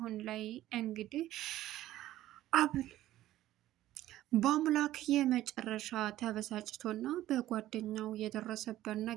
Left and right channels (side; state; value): left; quieter; 14.3 dB